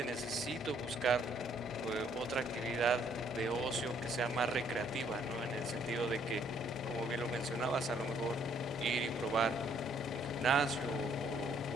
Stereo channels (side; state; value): both; normal; correlation 0.66